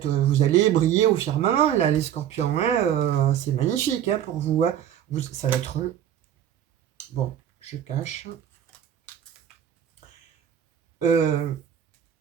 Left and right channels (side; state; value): left; quieter; 10.2 dB